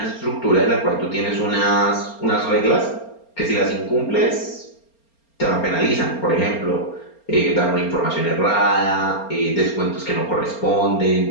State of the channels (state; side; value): late; right; 4.3 ms